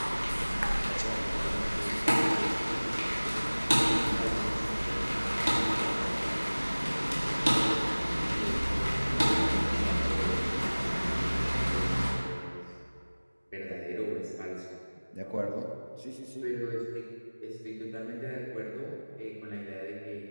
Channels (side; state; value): both; inverted; correlation -1.00